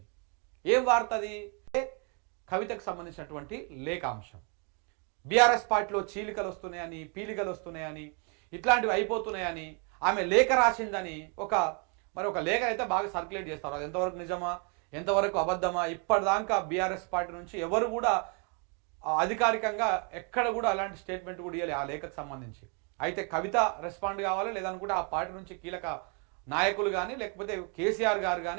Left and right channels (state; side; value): quieter; left; 37.1 dB